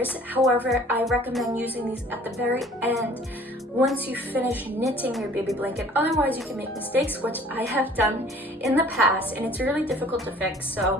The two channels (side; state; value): both; normal; correlation 0.51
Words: However, I recommend using these at the very end once you finish knitting your baby blanket. Otherwise, you can make mistakes, which I have done in the past, and it's really difficult to fix.